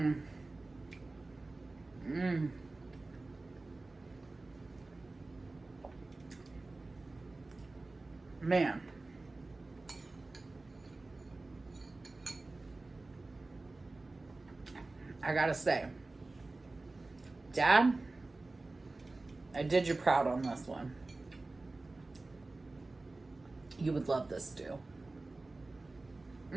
Mmm. Man. I gotta say, Dad, I did you proud on this one. You would love this stew.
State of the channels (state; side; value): quieter; left; 3.2 dB